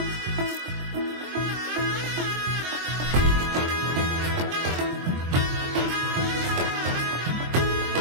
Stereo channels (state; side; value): late; left; 23 ms